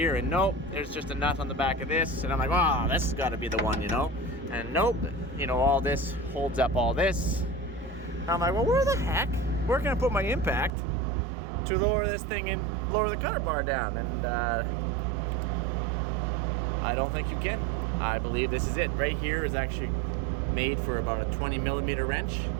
and nope, there's just a nut on the back of this. And I'm like, wow, this has got to be the one, you know? And nope, you know, all this holds up all this. And I'm like, well, where the heck? Where can I put my impact to lower this thing and lower the cutter bar down? And I don't think you can. I believe this is it. Right here is actually made for about a 20 millimeter wrench,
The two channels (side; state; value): left; drops out; at 10.7 s